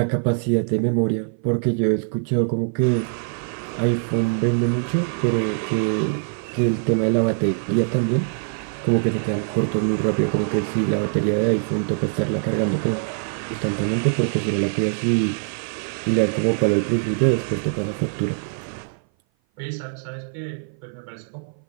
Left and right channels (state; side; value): silent; left; 57 dB below the other